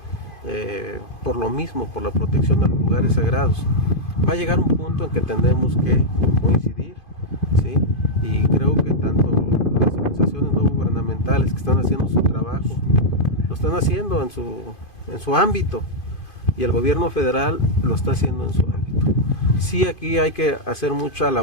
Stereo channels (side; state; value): right; late; 2.5 ms